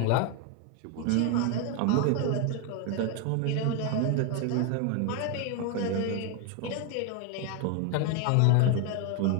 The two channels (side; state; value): both; different; correlation 0.01